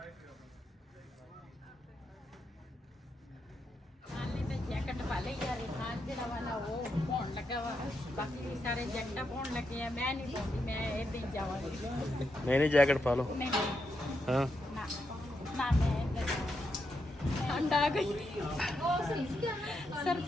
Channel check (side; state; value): both; normal; correlation 0.83